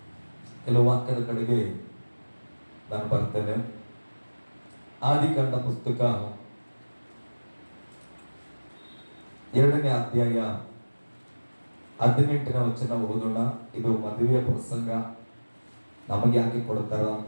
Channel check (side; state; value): both; inverted; correlation -1.00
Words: ಕೆಲವು ವಾಕ್ಯದ ಕಡೆಗೆ ನಾನು ಬರ್ತೇನೆ. ಆದಿಕಾಂಡ ಪುಸ್ತಕ 2ನೇ ಅಧ್ಯಾಯ 18ನೇ ವಚನ ಓದೋಣ. ಇದು ಮದುವೆಯ ಪ್ರಸಂಗ. ನಮಗೆ ಯಾಕೆ ಕೊಡ್ತಾರ ಅಂತ